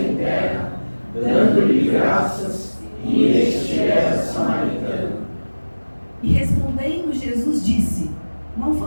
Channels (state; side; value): inverted; both; correlation -1.00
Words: terra, dando-lhe graças, e este era samaritano. E respondendo Jesus disse: não